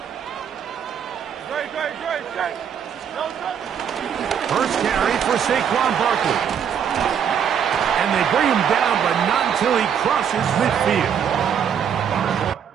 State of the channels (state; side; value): quieter; left; 8.1 dB